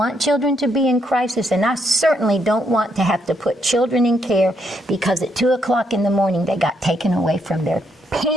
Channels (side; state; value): both; normal; correlation 0.75